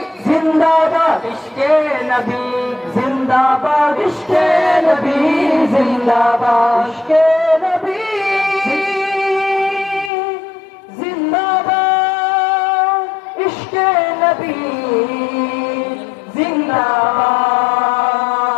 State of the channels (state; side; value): drops out; right; at 10.1 s